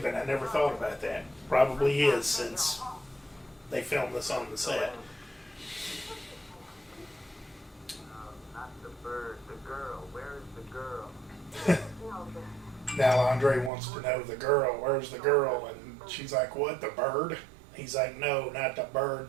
I never thought about that. Probably is, since they filmed this on the set. Now Andre wants to know the girl. Where's the girl? And she's like, what, the bird? He's like, no, not the bird,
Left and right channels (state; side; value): drops out; left; at 13.7 s